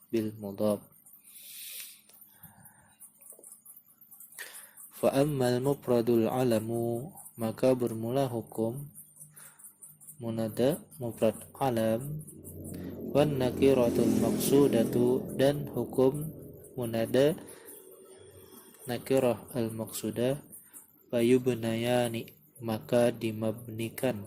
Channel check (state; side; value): identical; both; correlation 1.00